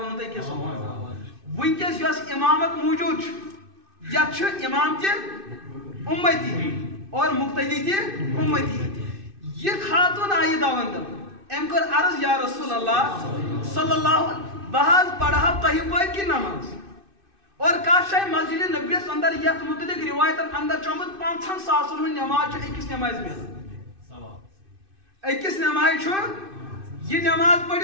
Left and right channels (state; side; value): late; left; 2.6 ms